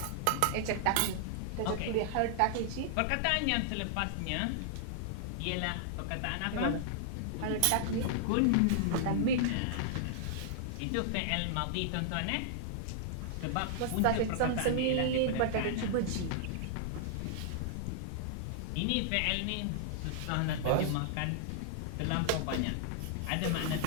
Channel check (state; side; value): different; both; correlation -0.01